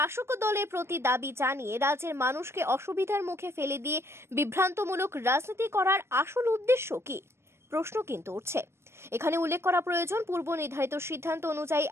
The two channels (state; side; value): late; left; 0.12 ms